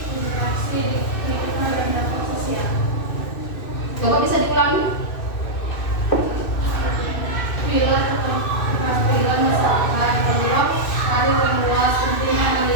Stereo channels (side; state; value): right; late; 2.6 ms